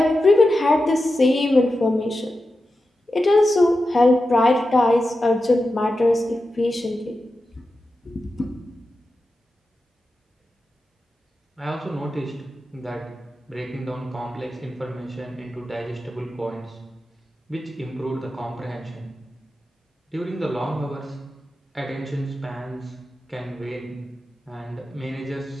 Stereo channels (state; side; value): normal; both; correlation 0.91